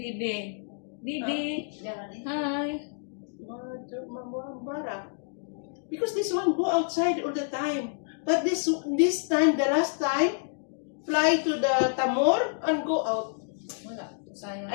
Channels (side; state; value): right; silent; digital silence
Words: Bibi. Hi. Because this one go outside all the time. But this time, the last time, fly to the Tamor and go out. Wala. Sayang.